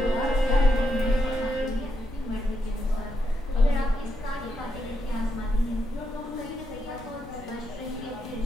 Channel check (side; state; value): both; normal; correlation 0.82